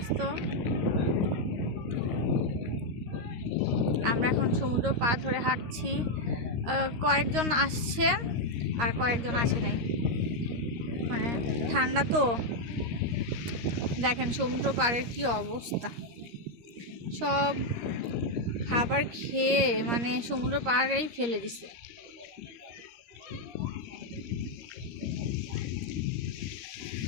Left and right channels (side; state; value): left; late; 13 ms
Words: আমরা এখন সমুদ্র পার ধরে হাঁটছি, কয়েকজন আসছে আর কয়েকজন আসে নাই, মানে ঠান্ডা তো। দেখেন সমুদ্র পাড়ের কি অবস্থা, সব খাবার খেয়ে মানে সমুদ্র পাড়েই ফেলে দিছে।